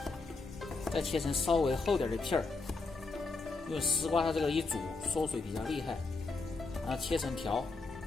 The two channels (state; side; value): quieter; right; 3.9 dB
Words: 再切成稍微厚点的片儿。因为丝瓜它这个一煮缩水比较厉害，然后切成条。